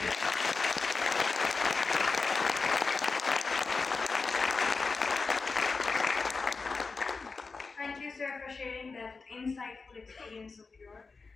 Thank you, sir, for sharing that insightful experience of yours.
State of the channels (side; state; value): right; quieter; 4.3 dB